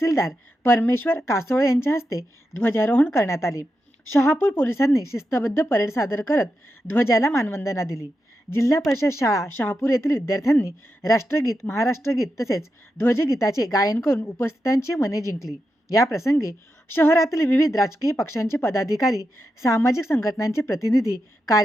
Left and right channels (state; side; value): normal; both; correlation 0.88